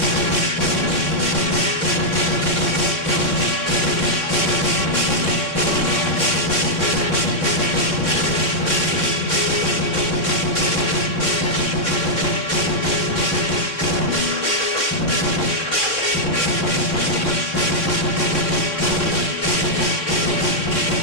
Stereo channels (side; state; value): right; late; 3.6 ms